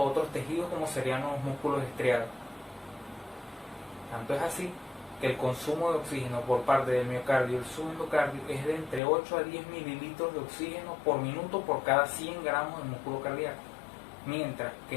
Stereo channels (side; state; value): right; drops out; at 9.0 s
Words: otros tejidos como serían los músculos estriados. Tanto es así que el consumo de oxígeno por parte del miocardio y el subendocardio es de entre 8 a 10 mililitros de oxígeno por minuto por cada 100 gramos de músculo cardíaco, mientras que